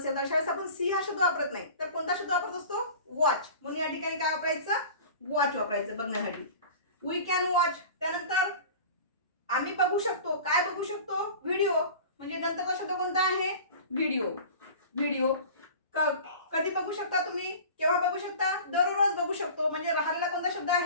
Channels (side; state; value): both; inverted; correlation -0.39